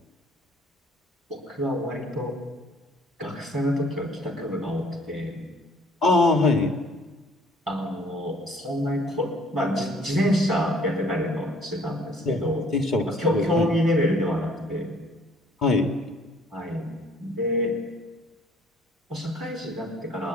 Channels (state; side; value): normal; both; correlation 0.58